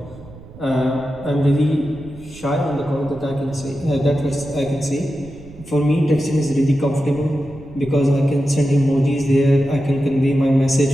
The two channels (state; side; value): noise; right; rumble, 18 dB below the sound